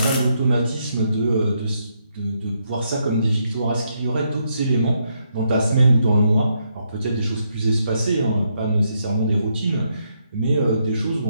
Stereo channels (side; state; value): both; inverted; correlation -0.78